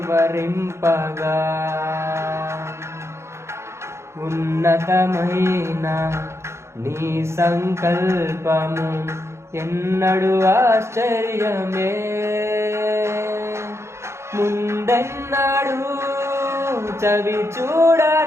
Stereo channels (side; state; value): left; late; 0.13 ms